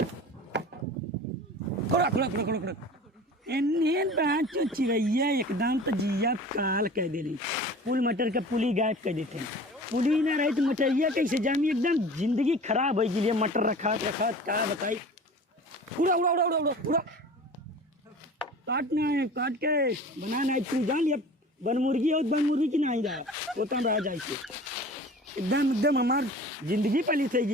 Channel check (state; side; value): normal; both; correlation 0.40